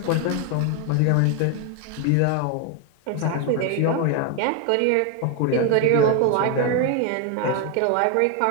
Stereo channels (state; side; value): different; both; correlation 0.01